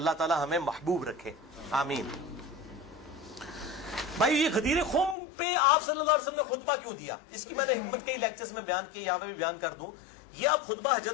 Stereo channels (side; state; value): right; drops out; at 5.2 s